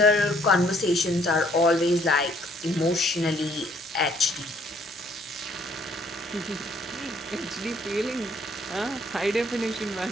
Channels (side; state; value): both; normal; correlation 0.64